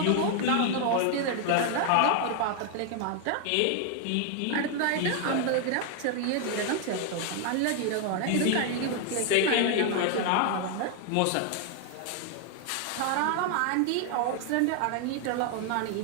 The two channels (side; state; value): both; different; correlation 0.00